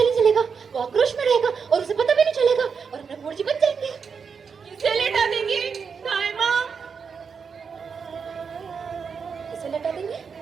चलेगा, वो आक्रोश में रहेगा और उसे पता भी नहीं चलेगा और हम नकुल जी बच जाएंगे। किसे लेटा देंगी दाई माँ? किसे लेटा देंगे?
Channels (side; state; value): left; quieter; 6.0 dB